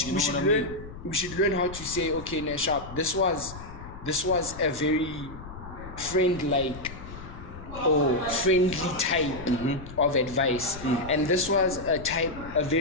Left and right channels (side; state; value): left; noise; rumble, 13 dB below the sound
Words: We should learn how to say, okay, Nashab, this was a very friendly type of advice, and this was a